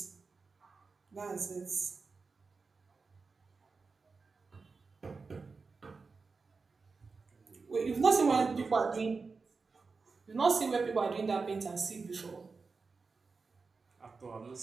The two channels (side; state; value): left; quieter; 4.5 dB